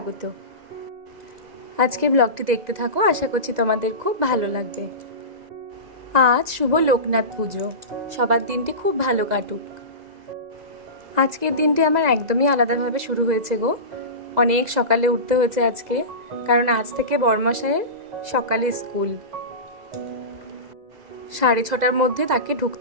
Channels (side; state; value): left; late; 2.0 ms